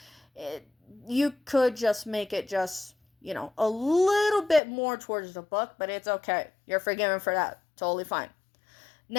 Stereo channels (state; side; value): drops out; right; at 4.6 s